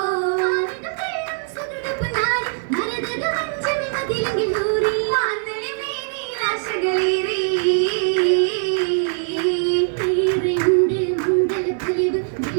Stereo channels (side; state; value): left; silent; 65 dB below the other